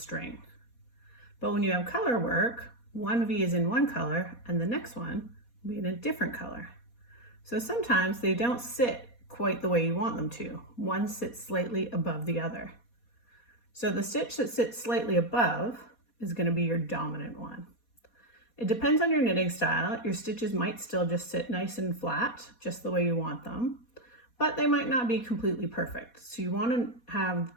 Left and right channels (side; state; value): right; late; 4.2 ms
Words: But when you have color work, one V is in one color and the next one will be in a different color. So sometimes they don't sit quite the way you want them to. One sits slightly above the other. So the stitch that sits slightly above is going to be your dominant one. It depends on your knitting style. Your stitches might still just sit nice and flat, just the way you want them, but they might not be completely perfect. So you want to have